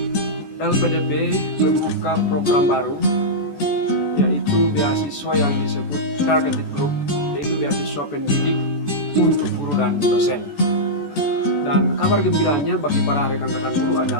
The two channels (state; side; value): late; right; 14 ms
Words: LPDP membuka program baru, yaitu beasiswa yang disebut Targeted Group, yaitu beasiswa pendidik untuk guru dan dosen. Dan kabar gembiranya bagi para rekan-rekan guru